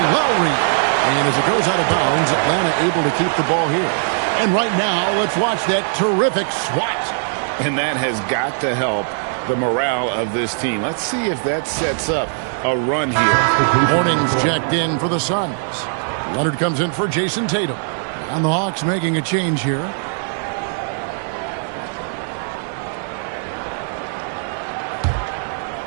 Lowry. And as it goes out of bounds, Atlanta able to keep the ball here. And right now, let's watch that terrific swat. And that has got to help the morale of this team. Let's see if that sets up a run here. Morning's checked in for the Suns. Leonard comes in for Jason Tatum. And the Hawks making a change here.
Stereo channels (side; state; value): left; silent; digital silence